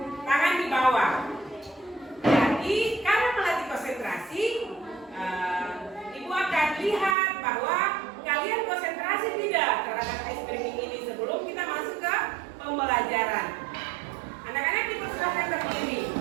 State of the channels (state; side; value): drops out; left; at 7.2 s